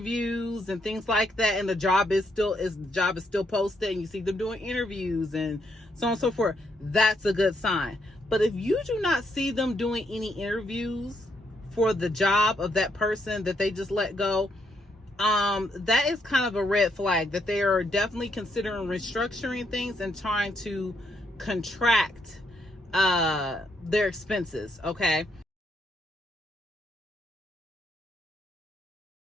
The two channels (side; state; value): both; normal; correlation 0.75